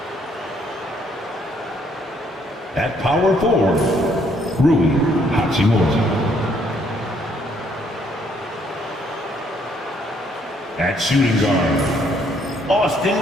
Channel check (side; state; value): both; normal; correlation 0.68